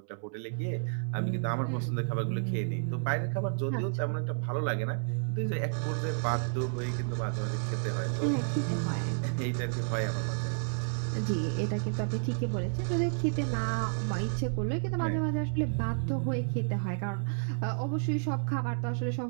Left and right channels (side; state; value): left; silent; 57 dB below the other